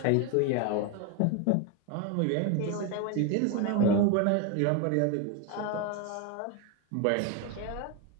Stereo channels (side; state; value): both; different; correlation 0.02